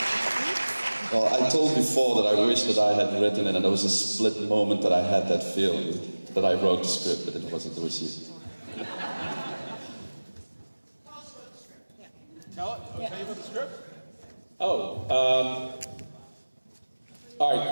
Well, I told before that I wish that I had written it, and there was a split moment that I had that feeling that I wrote the script, but it wasn't received. Tell you about the script? All right,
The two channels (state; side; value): inverted; both; correlation -1.00